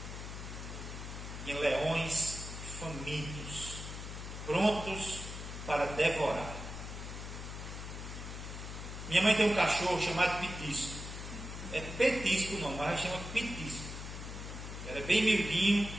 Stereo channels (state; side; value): noise; left; hum, 8 dB below the sound